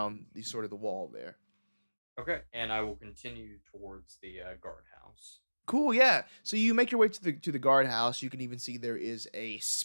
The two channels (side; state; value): both; inverted; correlation -1.00